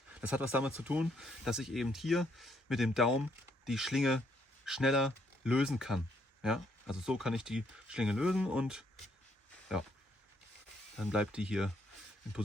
Das hat was damit zu tun, dass ich eben hier mit dem Daumen die Schlinge schneller lösen kann. Ja, also so kann ich die Schlinge lösen und ja, dann bleibt die hier in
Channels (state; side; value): normal; both; correlation 0.71